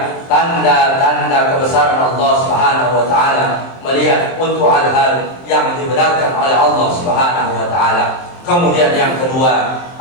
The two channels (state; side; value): late; right; 23 ms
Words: tanda-tanda kebesaran Allah Subhanahu wa taala, melihat untuk hal-hal yang dibenarkan oleh Allah Subhanahu wa taala. Kemudian yang kedua,